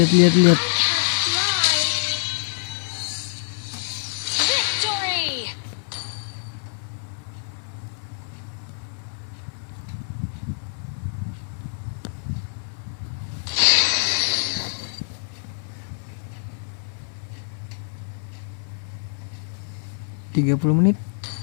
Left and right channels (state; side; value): silent; right; digital silence